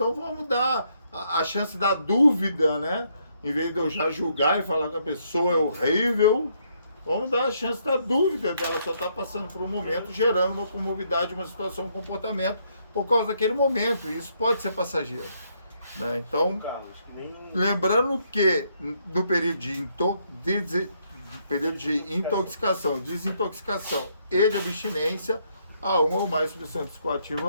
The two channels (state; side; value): inverted; both; correlation -0.73